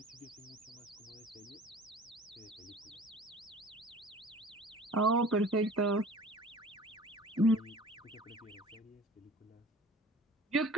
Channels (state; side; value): normal; both; correlation 0.45